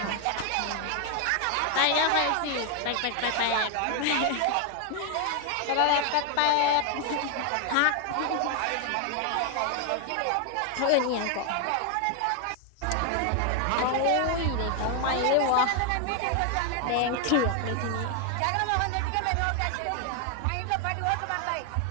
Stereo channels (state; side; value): different; both; correlation 0.00